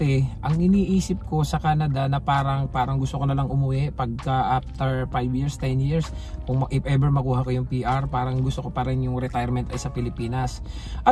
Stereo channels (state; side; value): identical; both; correlation 1.00